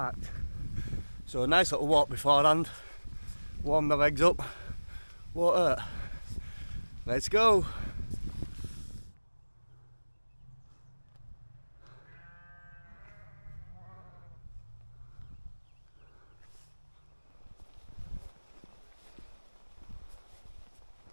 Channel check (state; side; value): inverted; both; correlation -1.00